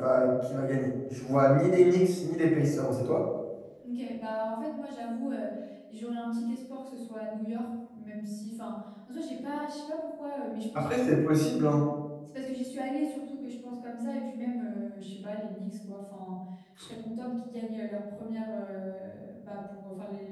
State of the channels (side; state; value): both; identical; correlation 1.00